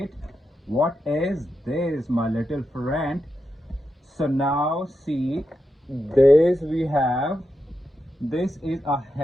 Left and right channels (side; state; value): both; normal; correlation 0.87